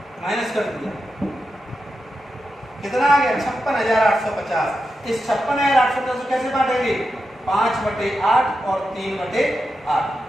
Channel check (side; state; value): both; normal; correlation 0.89